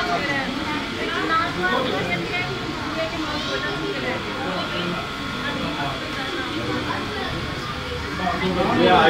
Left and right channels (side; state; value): both; identical; correlation 1.00